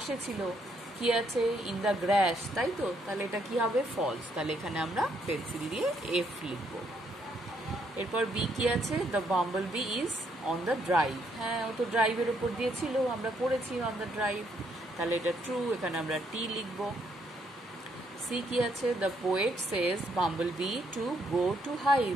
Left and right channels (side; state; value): both; normal; correlation 0.72